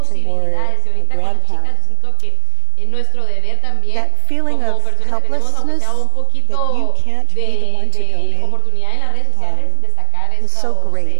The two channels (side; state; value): both; different; correlation 0.01